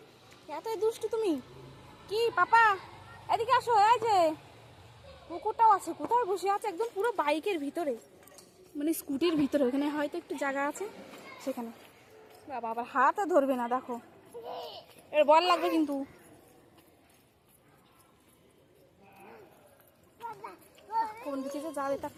এতই দুষ্টু তুমি। কি পাপা, এদিকে আসো। এই যে কুকুরটাও আছে, কোথায় বসে আছে? একদম পুরো বাইকের ভিতরে, মানে স্কুটির ভিতরে, ওখানে হয়তো একটু জায়গা আছে সেখানে। বাবা আবার হাতে ধরবে না, দেখো এর বল লাগবে কিন্তু। কোন দিকে যে যাবে তার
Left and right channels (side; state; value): both; identical; correlation 1.00